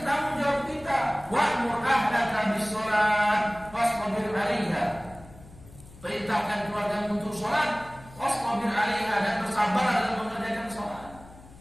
tanggung jawab kita. Wa'mur ahlaka bis-sholat wasbir 'alaiha. Perintahkan keluarga untuk sholat, wasbir 'alaiha, dan bersabar dalam mengerjakan sholat.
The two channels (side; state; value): left; noise; hum, 21 dB below the sound